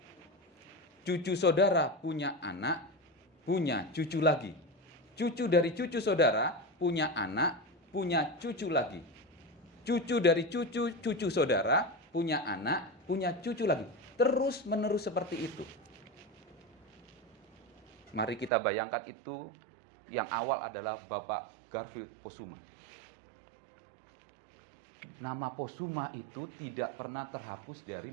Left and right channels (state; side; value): drops out; left; at 18.5 s